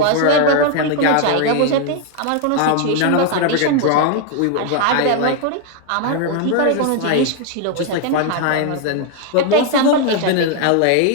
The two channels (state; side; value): different; both; correlation 0.00